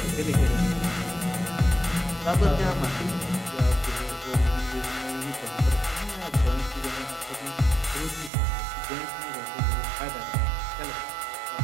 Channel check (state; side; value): drops out; left; at 8.3 s